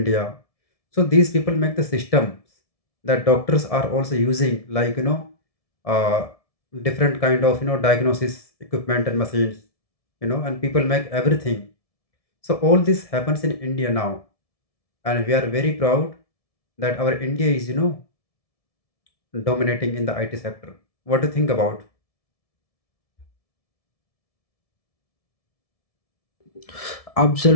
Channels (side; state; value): right; late; 1.7 ms